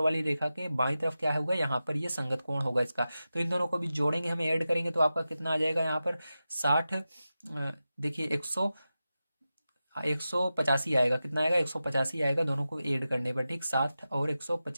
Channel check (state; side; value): inverted; both; correlation -0.93